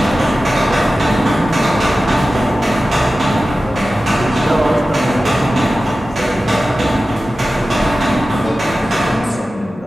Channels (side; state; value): both; normal; correlation 0.95